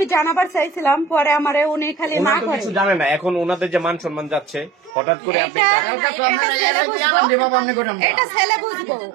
জানাবার চাইছিলাম, পরে আমারে উনি খালি না ওনারা তো করে। কিছু জানে না। এখন ওনাদের যে মান সম্মান যাচ্ছে, হঠাৎ করে আপনি এটা ছেলে বুঝবো,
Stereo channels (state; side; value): drops out; left; at 5.0 s